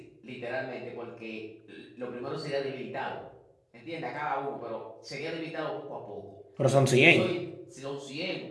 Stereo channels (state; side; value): identical; both; correlation 1.00